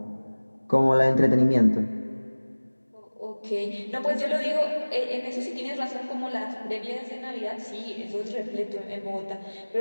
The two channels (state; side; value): inverted; both; correlation -1.00